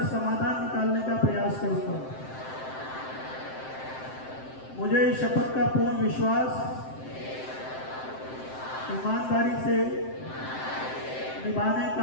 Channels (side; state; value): right; late; 7.7 ms